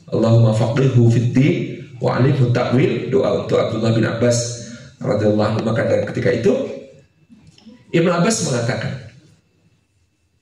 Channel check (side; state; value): both; identical; correlation 1.00